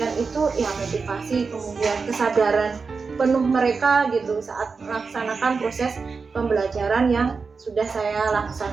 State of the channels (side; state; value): left; quieter; 4.8 dB